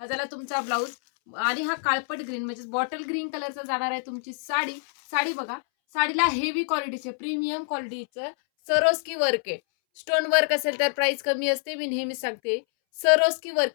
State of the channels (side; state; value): right; silent; 61 dB below the other